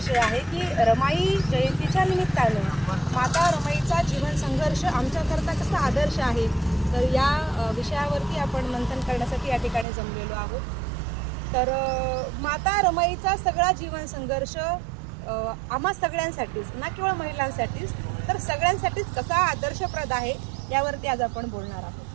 आहे की रमाई जयंतीच्या निमित्तानं माता रमाईचा जीवन संघर्ष आमच्याकरता कसा आदर्श आहे, तर या विषयावरती आपण मंथन करण्यासाठी या ठिकाणी जमलेलो आहोत. तर माता रमाईचा सगळा जीवन संघर्ष आम्हा सगळ्यांसाठीच, ना केवळ महिलांसाठीच तर सगळ्यांसाठीच कसा आदर्शप्रद आहे यावरती आज आपण बोलणार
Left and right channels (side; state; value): left; drops out; at 9.9 s